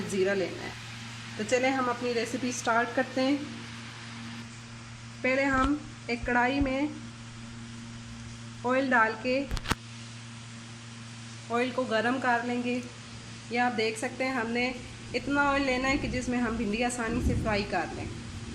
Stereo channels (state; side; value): identical; both; correlation 1.00